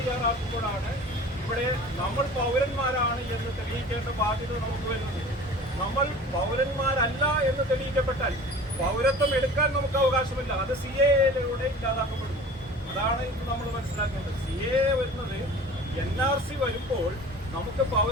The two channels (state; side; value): normal; both; correlation 0.41